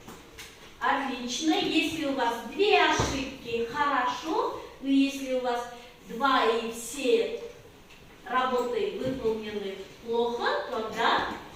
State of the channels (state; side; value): identical; both; correlation 1.00